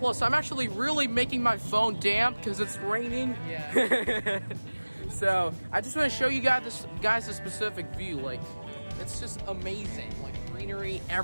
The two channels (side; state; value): both; inverted; correlation -1.00